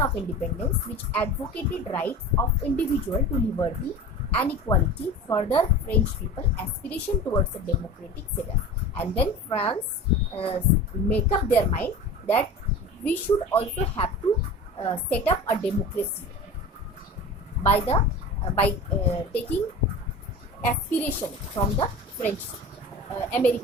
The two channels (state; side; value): normal; both; correlation 0.34